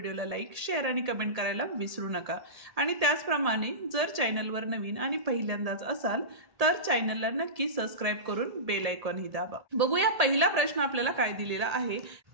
लाईक, शेअर आणि कमेंट करायला विसरू नका. आणि त्याचप्रमाणे जर चॅनलवर नवीन आणि पहिल्यांदाच असाल तर चॅनलला नक्की सबस्क्राईब करून बेल आयकॉनही दाबा. बघूया पहिला प्रश्न आपल्याला काय दिलेला आहे.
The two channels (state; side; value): late; left; 1.7 ms